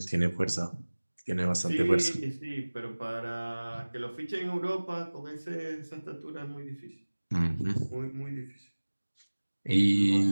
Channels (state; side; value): inverted; both; correlation -1.00